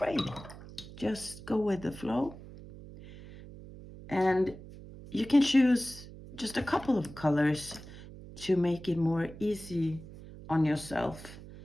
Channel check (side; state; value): right; noise; hum, 16 dB below the sound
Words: Just go with the flow. And you can choose just a couple of colors to make it more easy on yourself